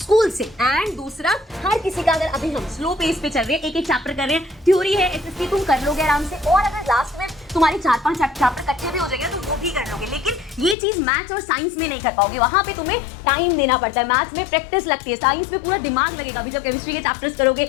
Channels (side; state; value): right; drops out; at 10.8 s